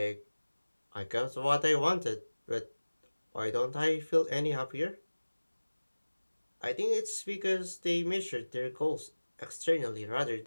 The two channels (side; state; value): both; inverted; correlation -1.00